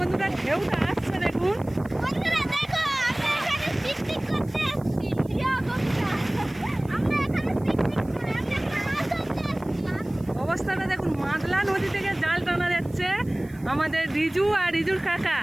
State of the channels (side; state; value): right; noise; hiss, 27 dB below the sound